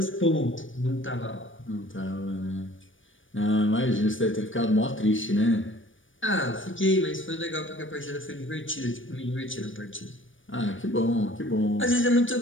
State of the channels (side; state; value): right; late; 0.57 ms